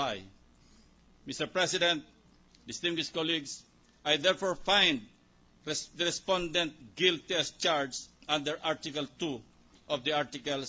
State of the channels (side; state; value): both; identical; correlation 1.00